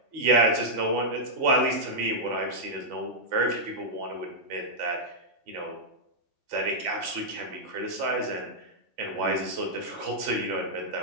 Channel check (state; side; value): late; left; 3.5 ms